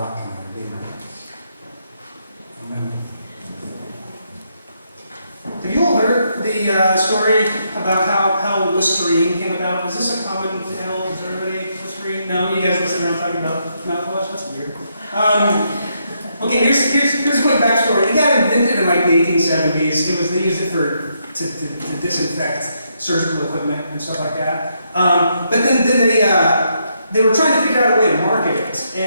and our redeemer. Amen. Have you all heard the story about how Listerine came about? Is this a common tale? Is everybody Listerine? No? You guys listen around talking about mouthwash? That's weird. Okay, here's a quick backstory. It got invented in like the 1870s. They used it to disinfect surgical equipment and stuff like that. But then they were trying to figure out a way to market it,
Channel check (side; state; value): both; inverted; correlation -0.77